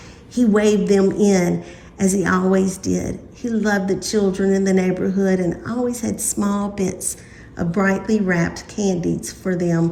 He waved them in, as he always did. He loved the children in the neighborhood and always had small bits of brightly wrapped candies for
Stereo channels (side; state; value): both; identical; correlation 1.00